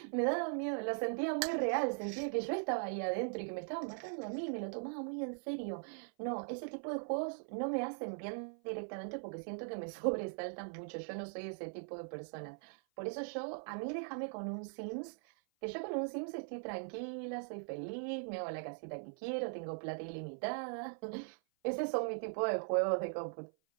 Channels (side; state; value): left; silent; 51 dB below the other